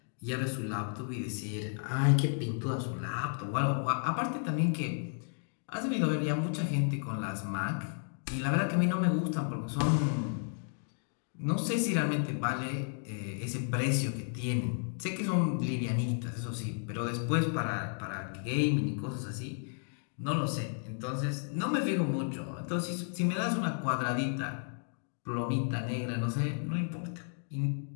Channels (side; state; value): right; silent; 56 dB below the other